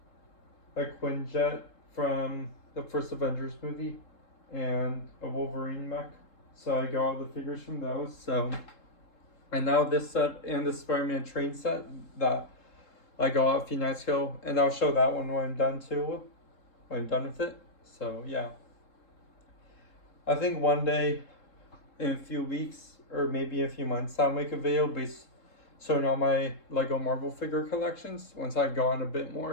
A Quinjet from the first Avengers movie. And a Wolverine mech. So I got all the figures from those. So And now this set and the Spider-Man train set that I got a few nights ago, and I'll show that one when I'm done too, when I'm done with it. So yeah, I think one day, in a few weeks or maybe a few months, I'll make a video based showing all my Lego Marvel figure collections once I've gone a bit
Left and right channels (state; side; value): late; right; 3.7 ms